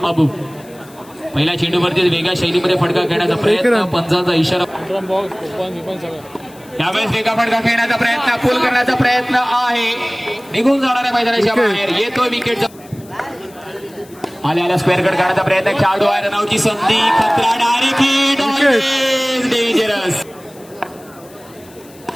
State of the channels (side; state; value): left; noise; hiss, 25 dB below the sound